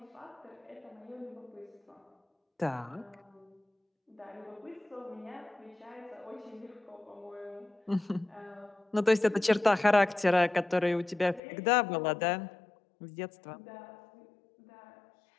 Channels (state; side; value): drops out; right; at 11.4 s